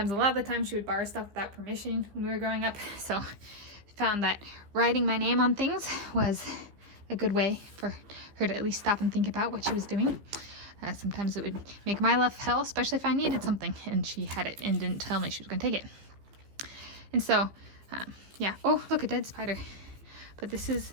a lot of the time she would borrow stuff without permission when we were growing up. So I found that writing my name on things was a good way for her to at least stop and think about what she was doing. Sometimes it would make my life hell, especially if I needed something and she had it and didn't tell me she was going to take it. And so, yeah. Oh, look, a dead spider. But this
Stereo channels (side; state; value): left; late; 15 ms